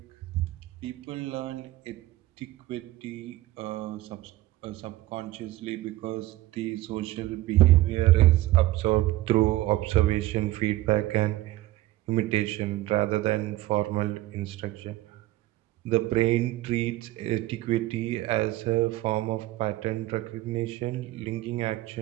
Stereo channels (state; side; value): quieter; left; 16.9 dB